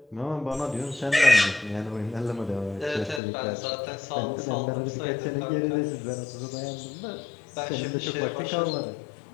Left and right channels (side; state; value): right; drops out; at 3.2 s